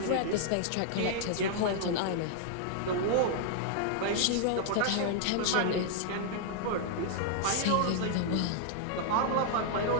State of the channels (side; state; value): both; different; correlation -0.01